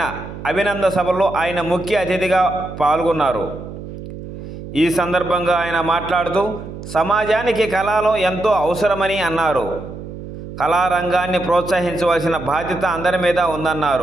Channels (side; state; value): right; noise; hum, 11 dB below the sound